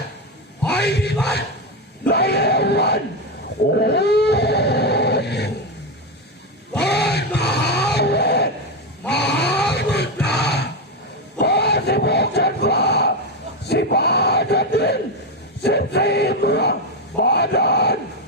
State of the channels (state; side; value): normal; both; correlation 0.09